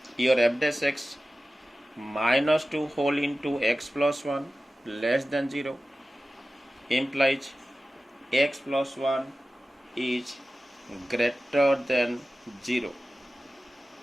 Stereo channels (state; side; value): normal; both; correlation 0.95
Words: your f dash x minus 2 whole into x plus 1 less than 0 implies x plus 1 is greater than 0